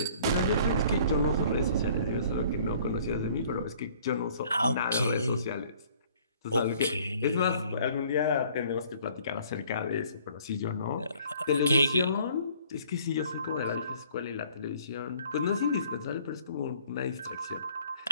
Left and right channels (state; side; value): inverted; both; correlation -0.56